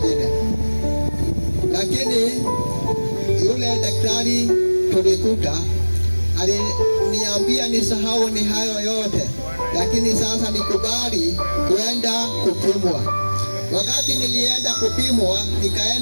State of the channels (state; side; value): inverted; both; correlation -1.00